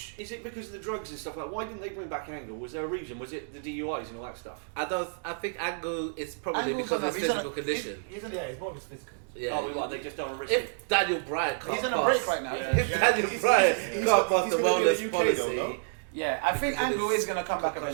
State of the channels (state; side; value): silent; left; digital silence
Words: Is it because of the drugs and stuff like? Why didn't they bring back Angle? Was there a reason? Was it the DUIs and all that stuff? I think Angle is probably because of his physical condition. He's more of his physical. Yeah. They just don't risk if Daniel Bryan can't he's on a break right now. If Daniel Bryan can't pass the wellness policy. Yeah, I think Angle is going to come back